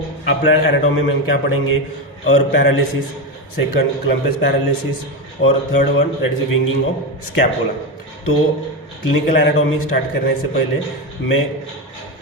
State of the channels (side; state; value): both; normal; correlation 0.14